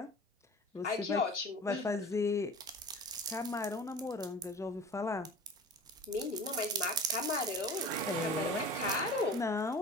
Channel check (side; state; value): both; normal; correlation 0.39